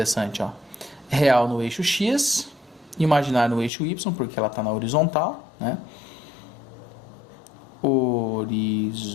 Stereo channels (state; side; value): drops out; right; at 3.7 s